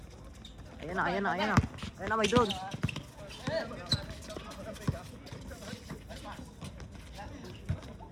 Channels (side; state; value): both; identical; correlation 1.00